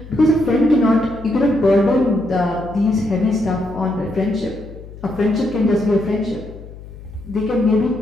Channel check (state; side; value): noise; left; hum, 16 dB below the sound